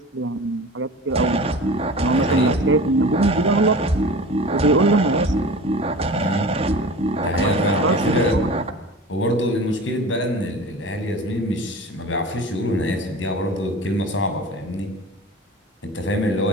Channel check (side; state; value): both; normal; correlation 0.37